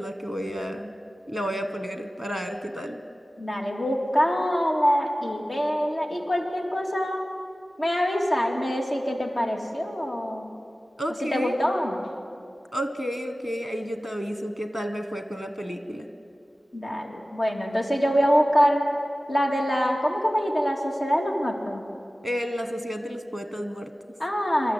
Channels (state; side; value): normal; both; correlation 0.96